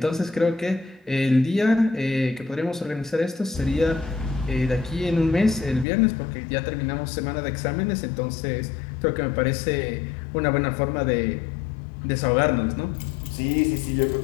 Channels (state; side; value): drops out; right; at 5.9 s